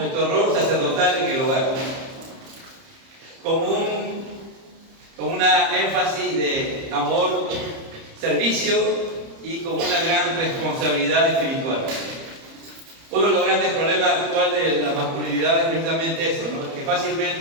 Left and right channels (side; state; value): left; late; 30 ms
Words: rol sacerdotal en el hogar, con una énfasis de amor, servicio, y con una gran responsabilidad espiritual. Uno de los grandes problemas actuales de la masculinidad es precisamente eso, ¿no? Que